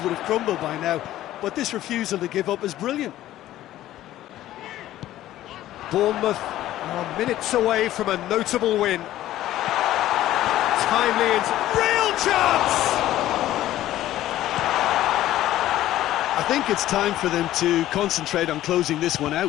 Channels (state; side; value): quieter; right; 14.0 dB